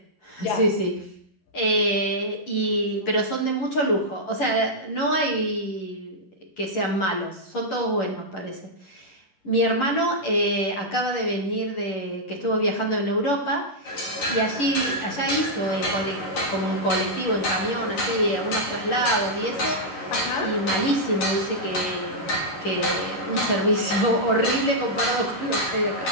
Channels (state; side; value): late; right; 11 ms